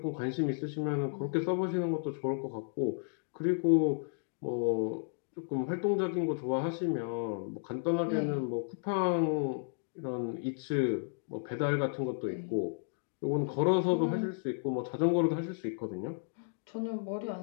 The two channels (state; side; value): silent; right; digital silence